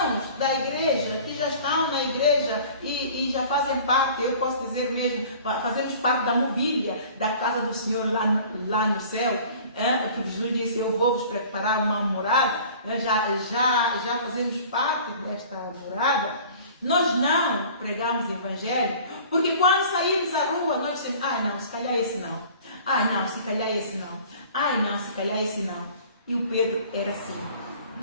da igreja, que já estão na igreja e já fazem parte, eu posso dizer mesmo, fazemos parte da mobília da casa do Senhor lá no céu, porque Jesus disse, eu vou vos preparar uma morada, já fazemos parte desta morada. Nós não pregamos evangelho, porque quando saímos à rua, nós dizemos, não, se calhar esse não. Não, se calhar esse não. Não, se calhar esse não. E o Pedro era assim.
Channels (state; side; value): inverted; both; correlation -0.46